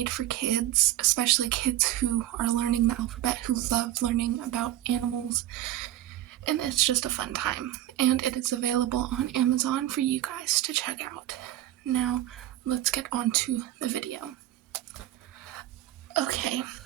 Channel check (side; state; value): left; quieter; 13.7 dB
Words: for kids, especially kids who are learning the alphabet, who love learning about animals. And it's just a fun time. And it is available on Amazon for you guys to check out. Now, let's get on to the video. Okay,